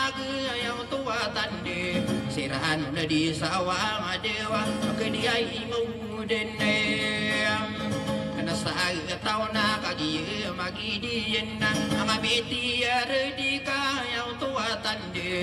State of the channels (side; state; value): both; identical; correlation 1.00